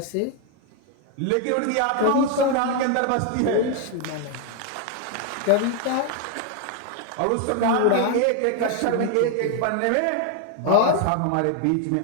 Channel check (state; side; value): different; both; correlation 0.01